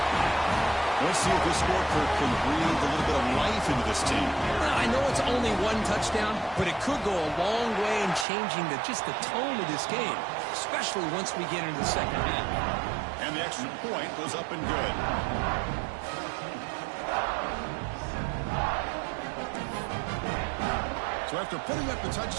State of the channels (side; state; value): left; drops out; at 8.2 s